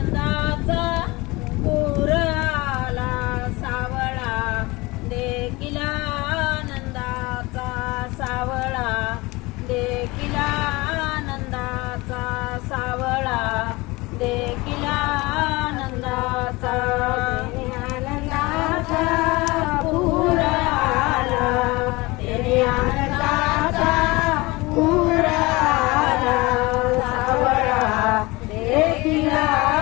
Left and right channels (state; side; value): quieter; right; 22.7 dB